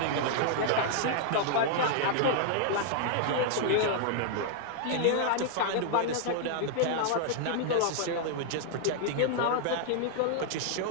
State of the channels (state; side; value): different; both; correlation 0.00